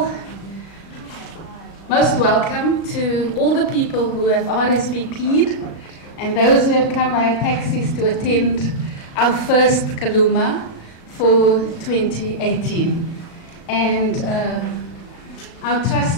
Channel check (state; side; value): late; right; 36 ms